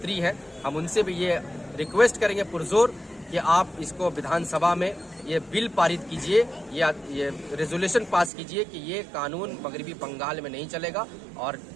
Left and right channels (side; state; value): left; drops out; at 8.3 s